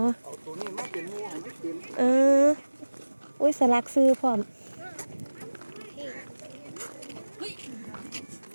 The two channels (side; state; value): both; inverted; correlation -1.00